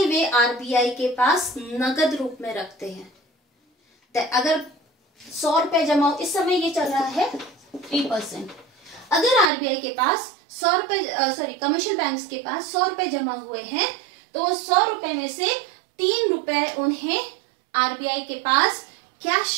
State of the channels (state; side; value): drops out; left; at 9.5 s